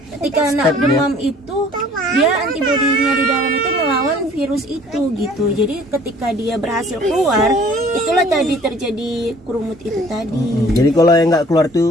ketika anak demam itu dia antibodinya di dalam itu melawan virus itu gitu. Jadi ketika dia berhasil keluar, itulah tadi terjadi kerumut itu tadi. Jadi kalau yang nggak keluar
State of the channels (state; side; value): normal; both; correlation 0.53